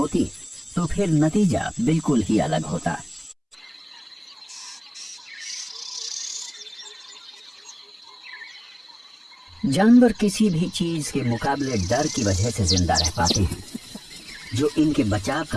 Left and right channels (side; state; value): both; identical; correlation 1.00